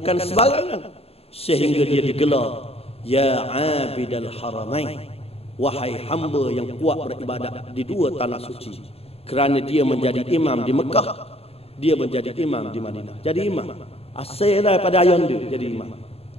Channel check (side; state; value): right; late; 0.29 ms